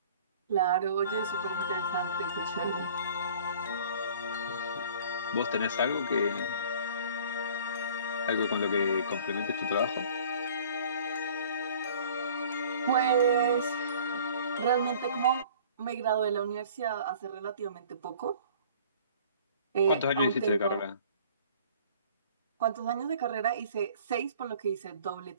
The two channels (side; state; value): both; inverted; correlation -0.50